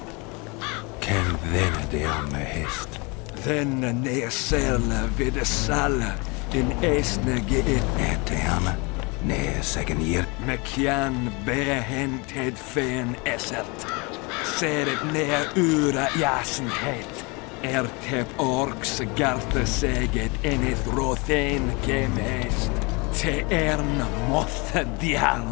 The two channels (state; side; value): quieter; right; 28.7 dB